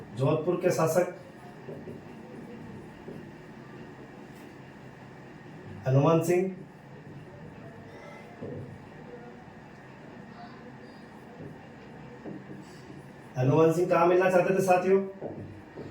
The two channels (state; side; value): identical; both; correlation 1.00